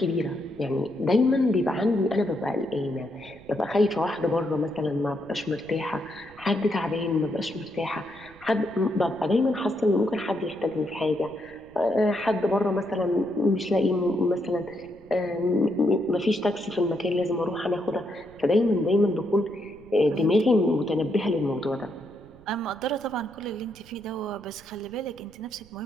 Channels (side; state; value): right; noise; rumble, 24 dB below the sound